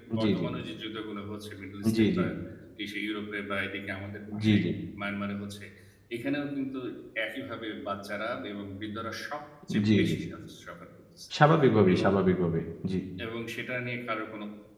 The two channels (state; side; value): identical; both; correlation 1.00